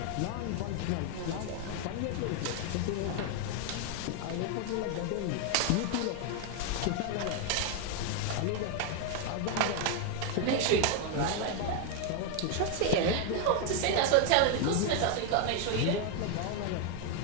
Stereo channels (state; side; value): different; both; correlation 0.01